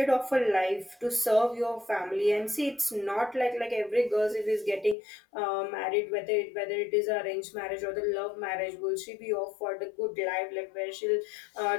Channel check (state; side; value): drops out; right; at 5.0 s